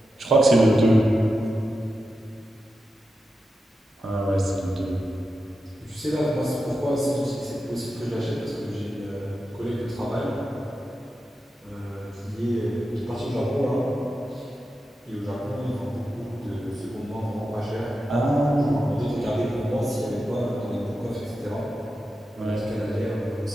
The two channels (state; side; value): normal; both; correlation 0.90